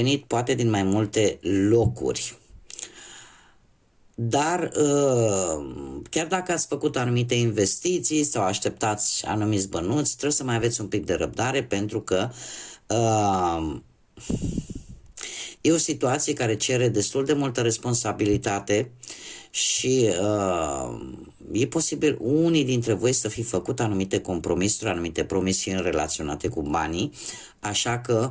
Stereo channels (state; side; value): identical; both; correlation 1.00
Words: poate din mai multe locuri. Dar chiar dacă ați făcut anumite investiții sau așteptați anumiți bănuți, trebuie să mai aveți un pic de răbdare, pentru că e o situație care cere destul de multă responsabilitate și e posibil unii dintre voi să fi făcut anumite compromisuri, anumite promisiuni relaționate cu banii, așa că